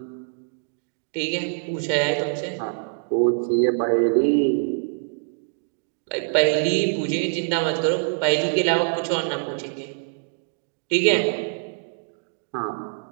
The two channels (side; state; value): left; silent; 62 dB below the other